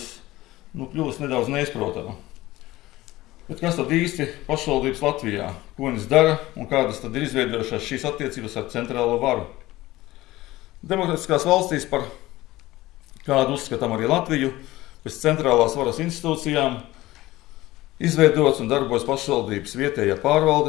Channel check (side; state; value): right; quieter; 17.7 dB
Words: kļuvis nedaudz neizprotama. Bet kas tad īsti pašvaldības Latvijā? Ko viņas dara un kādas tad ir izveidojušās šīs attiecības ar centrālo varu? Demokrātiskās valstīs, par kādu uzskatām arī Latviju, pēc centrālās varas institūcijām, izveidots un darbojas pašvaldības vietējā